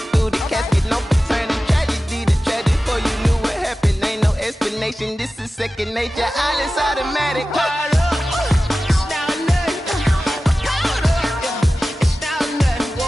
This is second nature, all is automatic.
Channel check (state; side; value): normal; both; correlation 0.95